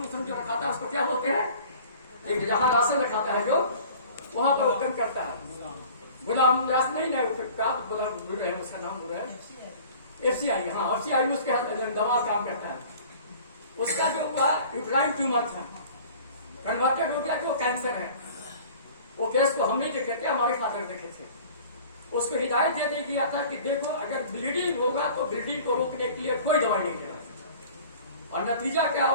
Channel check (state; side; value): inverted; both; correlation -0.45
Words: उसन जो रखाता है उसको क्या बोलते हैं, एक जहां राशन रखाता है जो वहां पर ओपन करता है, गुलाम व्यास नहीं है, गुलाम गुरु है, उसका नाम गुरु है, एफसीआई, हाँ एफसीआई में उसके दवा काम करता है। उसका जो हुआ यूट्राइन ट्यूमर था, कन्वर्टेड हो गया कि वो कैंसर है। वो केस को हम नहीं देखे थे, हमारे फादर देखे थे। उसको हिदायत दे दी गया था कि देखो अगर ब्लीडिंग होगा तो ब्लीडिंग को रोकने के लिए कोई दवाई नहीं देना। और नतीजा क्या